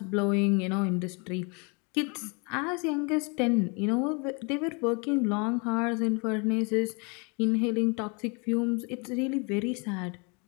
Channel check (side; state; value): right; quieter; 32.3 dB